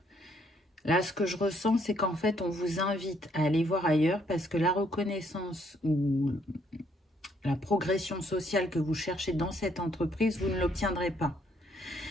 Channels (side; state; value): both; normal; correlation 0.69